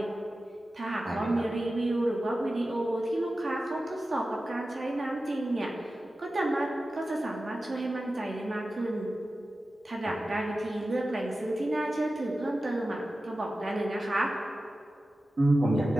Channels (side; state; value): both; normal; correlation 0.94